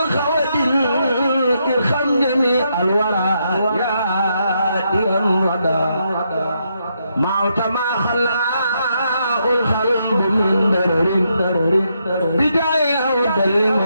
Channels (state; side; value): inverted; both; correlation -0.79